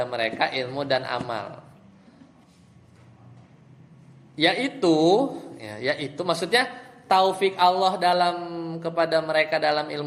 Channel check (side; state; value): both; identical; correlation 1.00